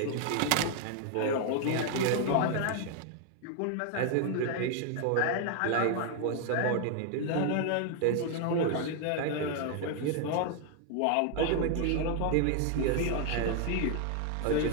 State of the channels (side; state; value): both; different; correlation 0.00